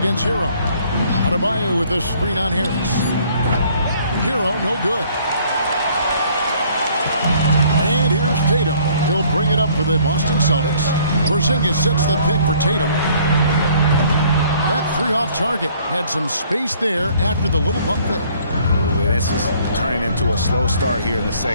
Hero. Adebayo with a screen on Harris. Hero, no good. And here's Tatum. He'll bring it up for the Boston Celtics. Porzingis sets the pick for Tatum. That 3 off target had some space there after the little bump fake. This is turning into a slow start here in the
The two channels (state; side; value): inverted; both; correlation -0.59